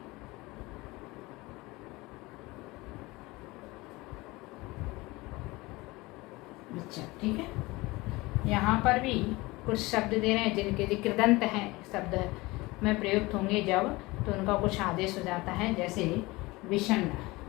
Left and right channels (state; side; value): quieter; right; 21.8 dB